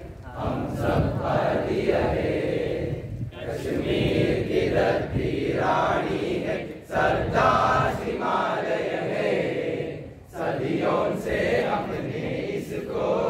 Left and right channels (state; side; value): identical; both; correlation 1.00